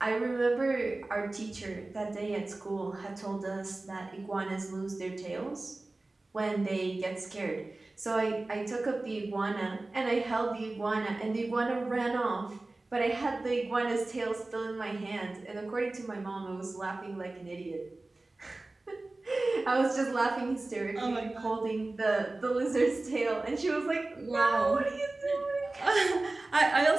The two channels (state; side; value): quieter; left; 3.0 dB